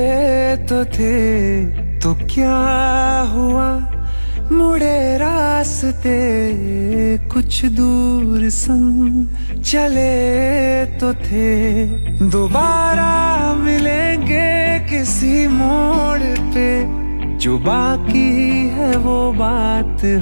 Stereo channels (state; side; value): inverted; both; correlation -1.00